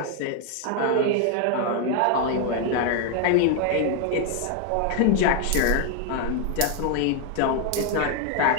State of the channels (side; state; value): both; different; correlation 0.00